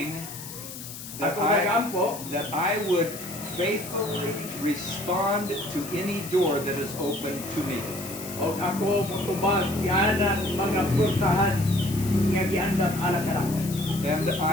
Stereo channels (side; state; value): left; noise; hiss, 11 dB below the sound